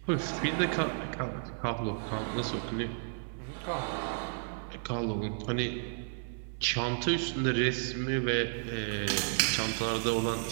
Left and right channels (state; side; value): silent; left; 56 dB below the other